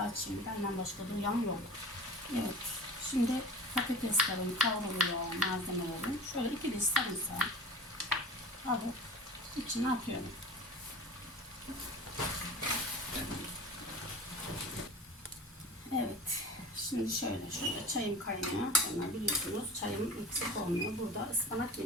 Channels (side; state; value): both; normal; correlation 0.37